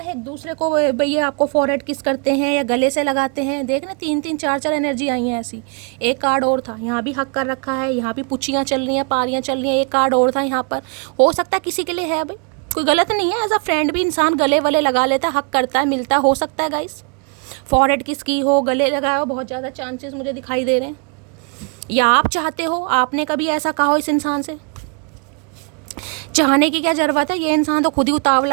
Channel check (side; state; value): left; quieter; 37.9 dB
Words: एक दूसरे को भैया आपको फॉरहेड किस करते हैं या गले से लगाते हैं। देख ना 3-3 4-4 एनर्जी आई हैं ऐसी। एक कार्ड और था, यहाँ भी हक कर रखा है, यहाँ भी पुचियाँ चल रही हैं, पारियाँ चल रही हैं। एक कार्ड और था यहाँ पर, हो सकता है किसी के लिए है भाई। कोई गलत नहीं है, एज अ फ्रेंड भी इंसान गले वले लगा लेता है, हक करता है, मिलता है, हो सकता है गाइस। फॉरहेड किसकी हो, गले लगाए हो, बहुत ज़्यादा चांसेस मुझे दिखाई दे रहे हैं। या आप चाहते हो, आपने कभी ऐसा कहा हो इस इंसान से। चाहने की क्या जरूरत है, ये इंसान तो खुद ही